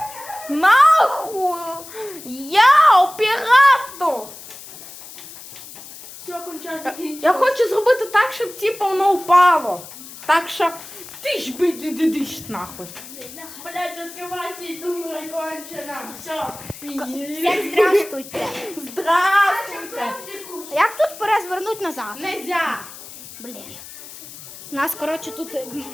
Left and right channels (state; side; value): noise; left; hiss, 15 dB below the sound